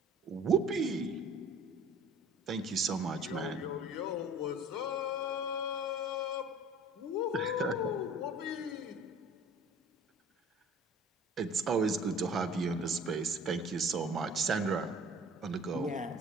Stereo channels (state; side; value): normal; both; correlation 0.47